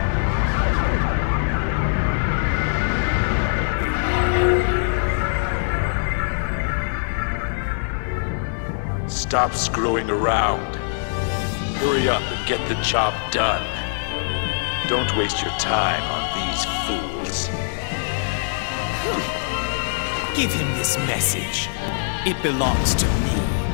Stop screwing around. Hurry up and get the job done. Don't waste your time on these fools. Give him this message. It belongs to me.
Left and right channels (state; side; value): silent; right; digital silence